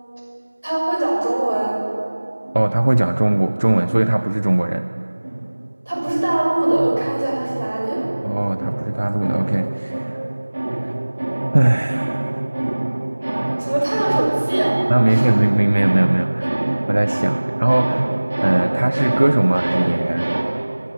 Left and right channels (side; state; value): both; inverted; correlation -1.00